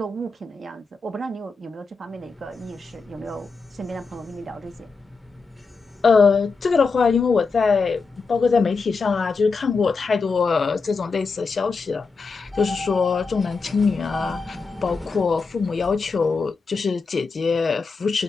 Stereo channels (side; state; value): right; quieter; 4.5 dB